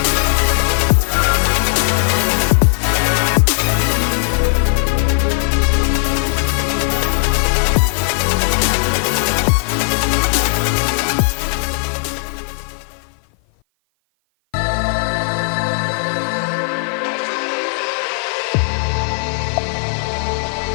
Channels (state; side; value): silent; right; 56 dB below the other